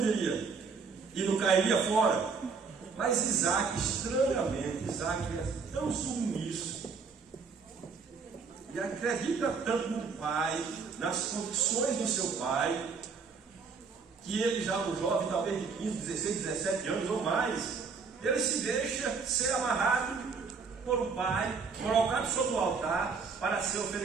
diria? E não cairia fora? Mas Isaac, estranhamente, Isaac é tão submisso e acredita tanto no pai, nas condições do seu pai, que ele já um jovem, talvez de 15, 16, 17 anos ou mais, ele se deixa ser amarrado por um pai, colocado sobre o altar para ser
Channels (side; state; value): left; quieter; 5.2 dB